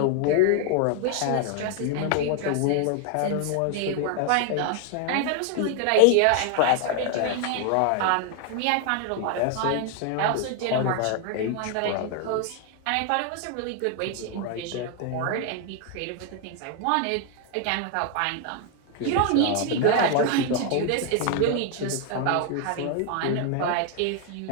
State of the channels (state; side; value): different; both; correlation 0.00